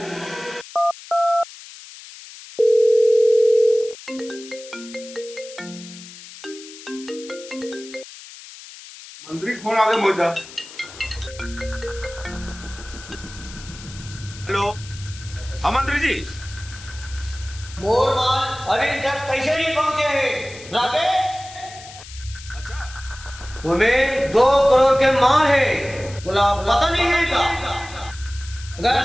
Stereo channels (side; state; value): left; noise; hiss, 16 dB below the sound